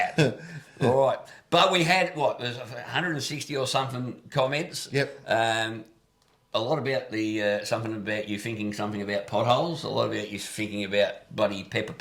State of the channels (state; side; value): identical; both; correlation 1.00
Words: All right. But we had, there's 160 or something comments. Yep. A lot about something about you thinking something about potholes, a lot about you thinking about bloody pepper